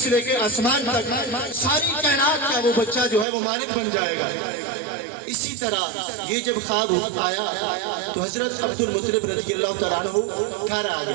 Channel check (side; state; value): left; drops out; at 3.2 s